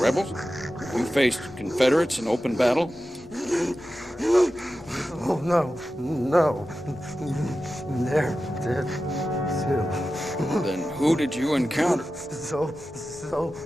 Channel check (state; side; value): normal; both; correlation 0.93